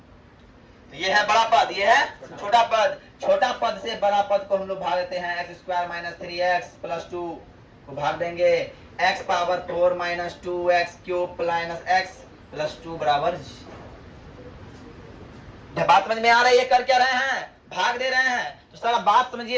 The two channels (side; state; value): both; identical; correlation 1.00